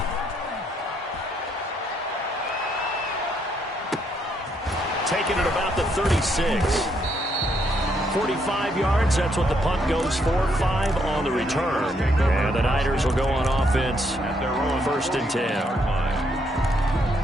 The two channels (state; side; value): normal; both; correlation 0.73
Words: Taking it about the 36. 45 yards, that's what the punt goes for. 5 on the return. And the Niners will go on offense at their own 1st and 10.